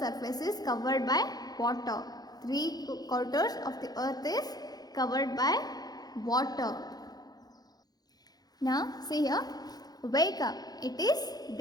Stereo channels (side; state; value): right; late; 0.19 ms